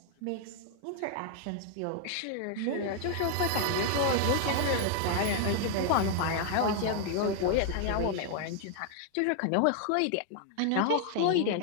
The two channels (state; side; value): different; both; correlation 0.00